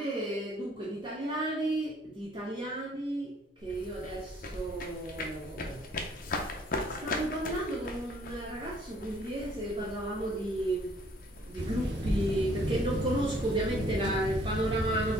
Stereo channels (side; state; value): both; normal; correlation 0.61